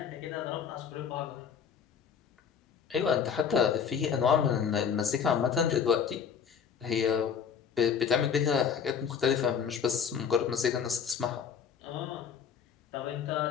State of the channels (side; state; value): right; quieter; 7.2 dB